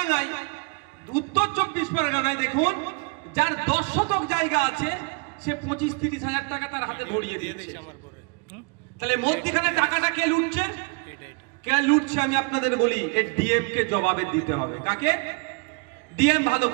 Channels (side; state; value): left; quieter; 33.5 dB